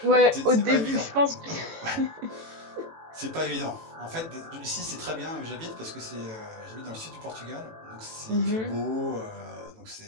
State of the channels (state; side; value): late; left; 18 ms